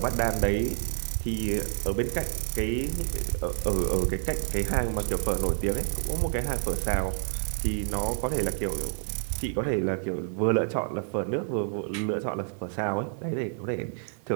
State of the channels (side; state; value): left; silent; 59 dB below the other